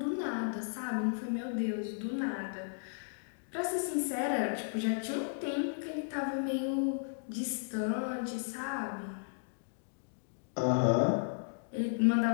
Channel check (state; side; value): silent; right; digital silence